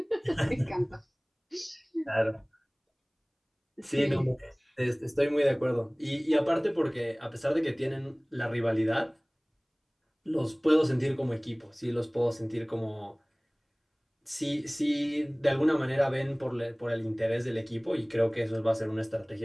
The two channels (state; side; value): identical; both; correlation 1.00